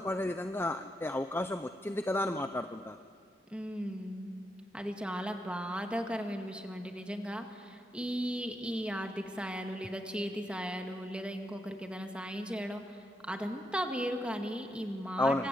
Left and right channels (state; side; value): normal; both; correlation 0.82